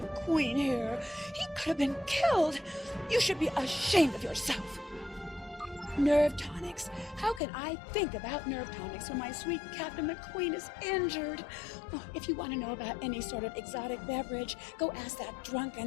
Queen here. He could have been killed. You should be ashamed of yourself. Nerve tonics. How can I think about nerve tonics when my sweet Captain McQueen is injured? Oh, if you want to know about any sort of exotic beverage, go ask that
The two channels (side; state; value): right; drops out; at 7.4 s